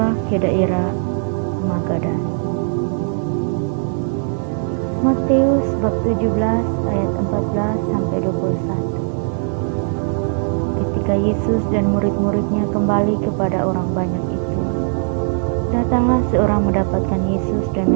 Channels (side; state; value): left; silent; digital silence